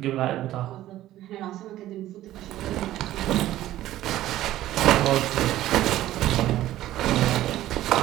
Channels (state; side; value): quieter; left; 14.2 dB